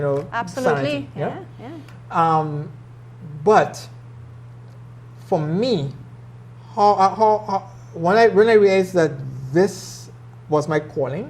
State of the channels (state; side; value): identical; both; correlation 1.00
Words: know, absolutely, sanity, yeah. But for me, when I realized that this was my calling,